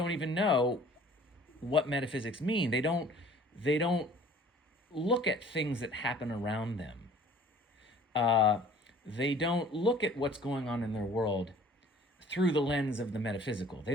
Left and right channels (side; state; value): both; normal; correlation 0.51